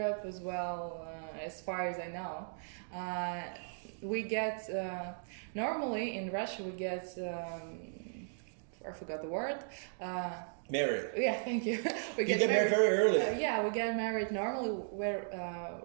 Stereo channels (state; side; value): silent; left; digital silence